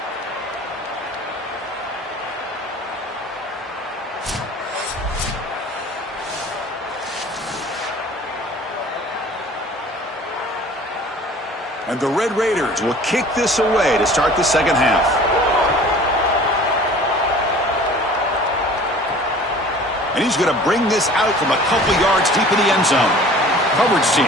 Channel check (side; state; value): both; normal; correlation 0.46